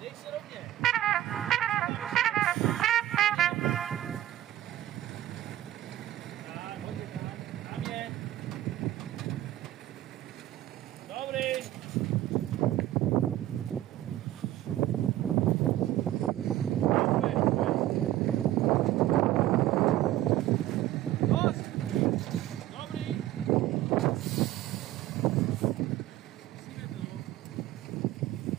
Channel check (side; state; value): left; quieter; 14.0 dB